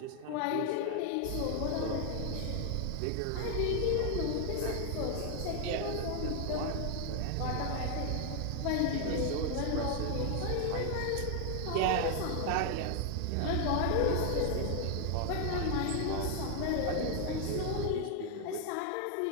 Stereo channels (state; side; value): different; both; correlation 0.00